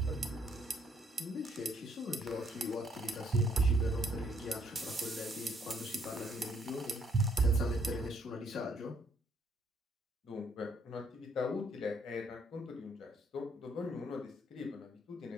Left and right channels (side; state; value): both; normal; correlation 0.68